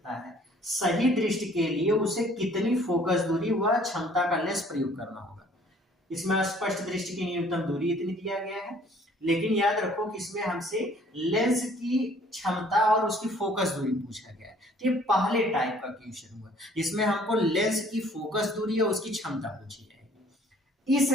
है। सही दृष्टि के लिए उसे कितनी फोकस दूरी व क्षमता का लेंस प्रयोग करना होगा। इसमें स्पष्ट दृष्टि की न्यूनतम दूरी इतनी दिया गया है, लेकिन याद रखो कि इसमें हमसे लेंस की क्षमता और उसकी फोकस दूरी पूछा गया है। तो ये पहले टाइप का क्वेश्चन हुआ जिसमें हमको लेंस की फोकस दूरी और उसकी क्षमता पूछी जाएगी। इस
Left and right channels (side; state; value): both; normal; correlation 0.57